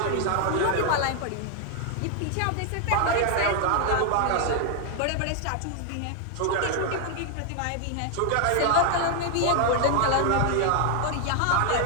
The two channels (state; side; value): different; both; correlation 0.00